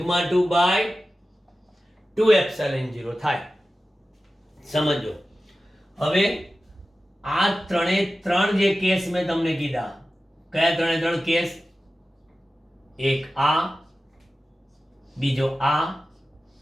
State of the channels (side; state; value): both; normal; correlation 0.95